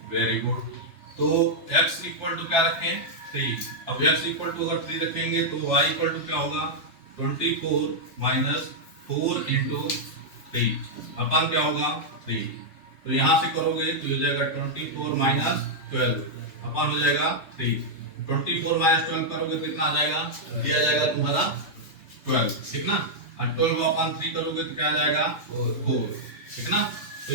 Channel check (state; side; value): late; right; 3.3 ms